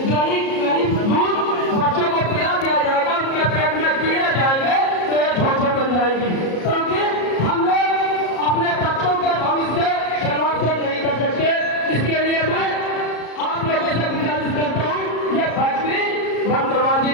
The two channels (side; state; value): right; late; 33 ms